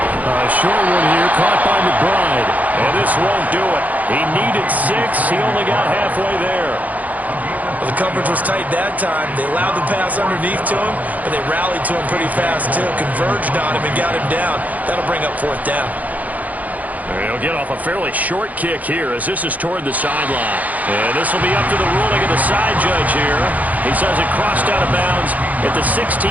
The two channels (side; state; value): left; late; 0.077 ms